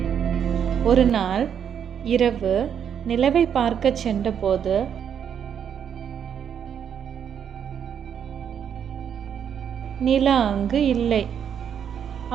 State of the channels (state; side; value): quieter; left; 8.3 dB